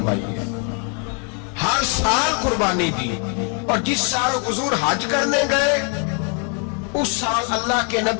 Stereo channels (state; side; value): quieter; right; 39.1 dB